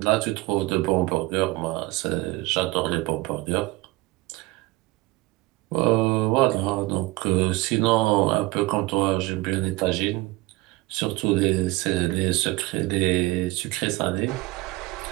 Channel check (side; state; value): left; quieter; 21.4 dB